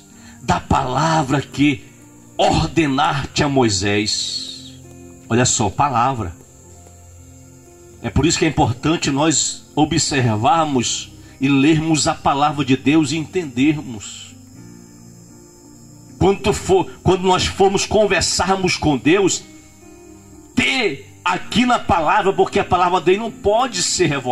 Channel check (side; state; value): both; identical; correlation 1.00